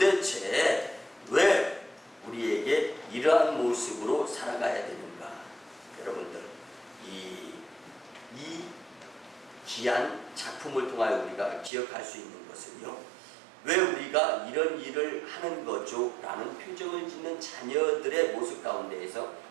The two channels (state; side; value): drops out; left; at 11.7 s